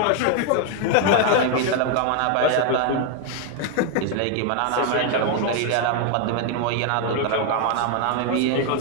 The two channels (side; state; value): both; different; correlation 0.01